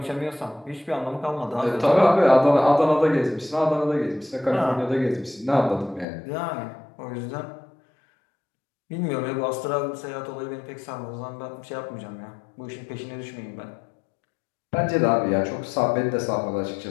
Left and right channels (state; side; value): drops out; right; at 6.1 s